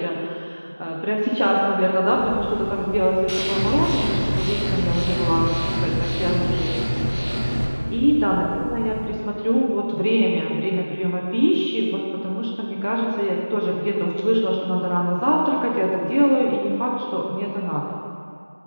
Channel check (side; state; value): both; inverted; correlation -1.00